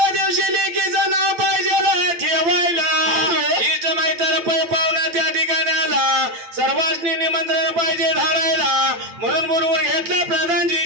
दिवशी लेकीचं नाव पाहिजे ठेवायला इष्ट मैत्र पै पाहुणा त्या ठिकाणाला सर्वांनी निमंत्रण पाहिजे धाडायला म्हणून बोलवून घेतलं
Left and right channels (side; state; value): left; late; 9.1 ms